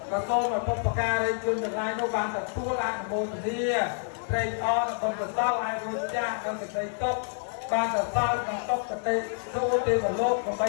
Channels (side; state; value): right; silent; digital silence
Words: ក៏សូមឲ្យបុព្វការីជនទាំងឡាយនោះបានទទួលអនុមោទនាត្រេកអរដល់កសលឲ្យរួចចាស់ដល់សេចក្តីទុកបានសរសើរក្នុងទុកកតិទូទេវលោកដើម្បី